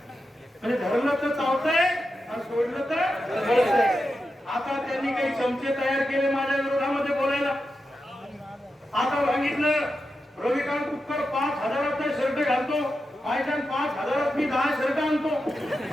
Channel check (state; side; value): normal; both; correlation 0.89